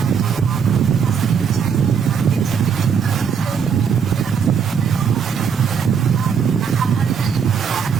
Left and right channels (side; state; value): left; quieter; 6.8 dB